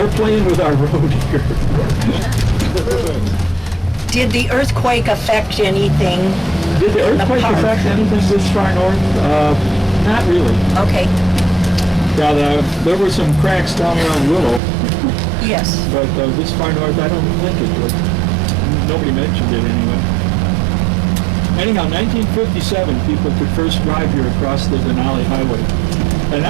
playing with our road here. Did the earthquake affect anything? Did the earthquake affect anything this far north? Not really. Okay. Yeah, there were some cracks down around Willow. Yes. But this far north, I don't think it would. Nobody mentioned it anyway. Anyhow, 1957, people could first drive here across the Denali Highway. And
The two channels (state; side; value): drops out; left; at 14.6 s